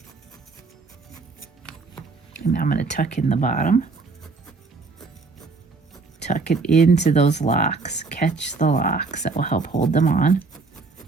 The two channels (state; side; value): quieter; left; 4.1 dB